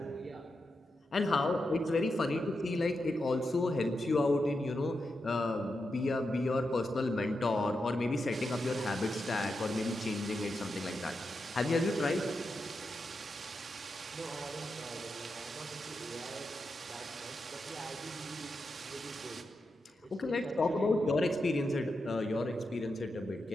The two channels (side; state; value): both; normal; correlation 0.87